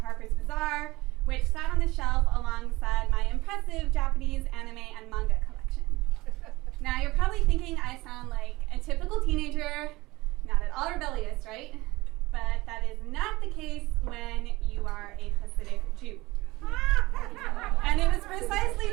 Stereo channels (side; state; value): left; quieter; 20.5 dB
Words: Bazaar, which sat on the shelf alongside my impressive Japanese anime and manga collection. Now you're probably thinking I sound like a typical teenager, not at all rebellious, right? But that is not the case when you are a Hasidic Jew. And it was precisely